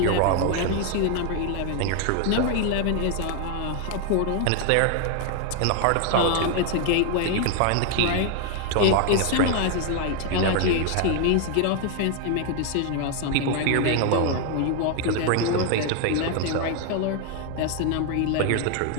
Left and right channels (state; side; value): different; both; correlation 0.00